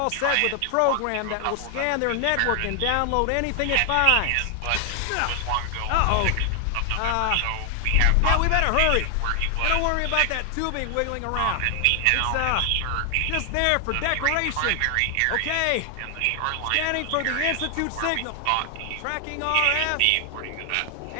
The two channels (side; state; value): both; different; correlation 0.00